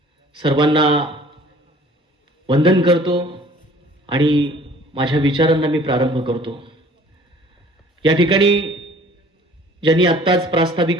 सर्वांना वंदन करतो आणि माझ्या विचारांना मी प्रारंभ करतो। या ठिकाणी ज्यांनी आत्ताच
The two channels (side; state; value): both; normal; correlation 0.52